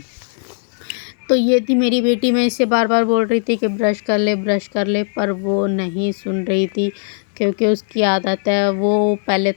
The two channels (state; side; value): silent; right; digital silence